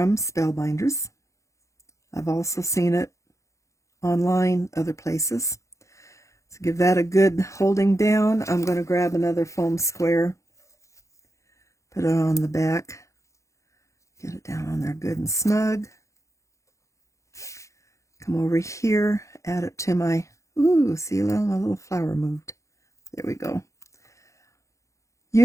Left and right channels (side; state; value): right; late; 0.15 ms